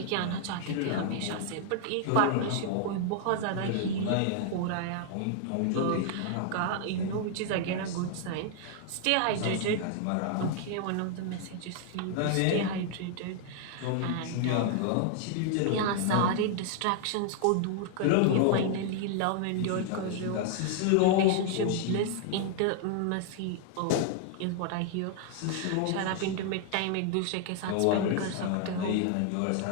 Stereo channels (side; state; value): both; different; correlation 0.00